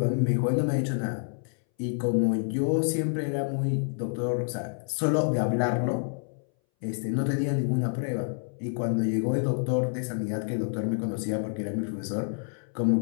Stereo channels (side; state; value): right; silent; 59 dB below the other